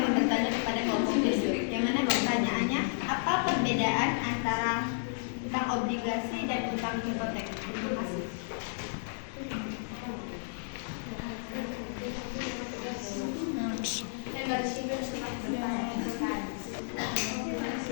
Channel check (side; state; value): right; silent; digital silence